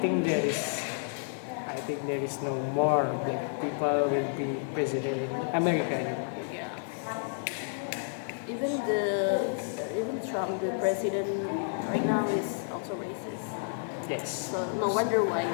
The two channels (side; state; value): right; silent; 57 dB below the other